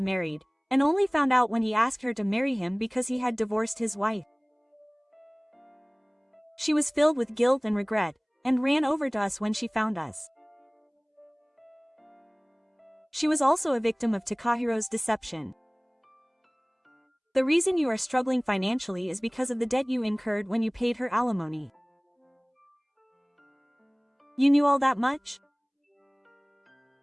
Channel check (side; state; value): both; identical; correlation 1.00